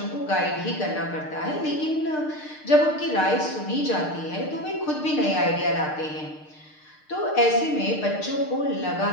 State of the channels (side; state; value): right; late; 6.6 ms